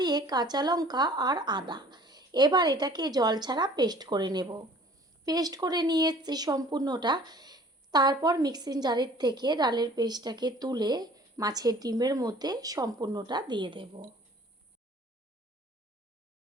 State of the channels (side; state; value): both; normal; correlation 0.51